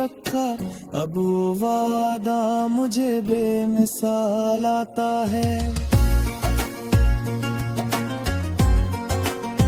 अब वो वादा मुझे बेमिसाल आता है।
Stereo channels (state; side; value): identical; both; correlation 1.00